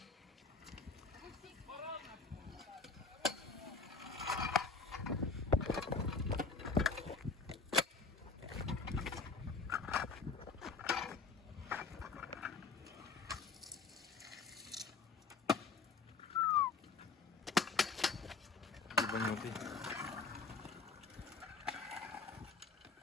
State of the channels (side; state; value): right; quieter; 4.4 dB